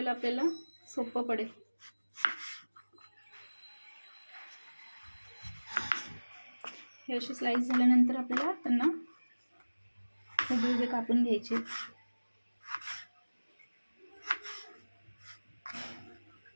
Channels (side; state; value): both; inverted; correlation -1.00